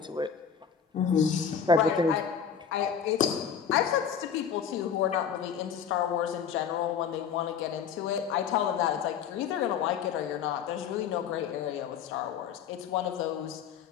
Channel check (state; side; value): quieter; right; 7.5 dB